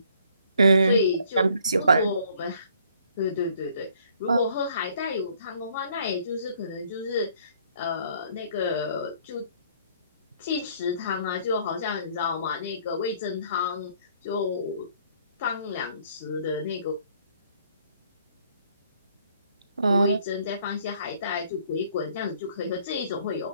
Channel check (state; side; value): inverted; both; correlation -0.62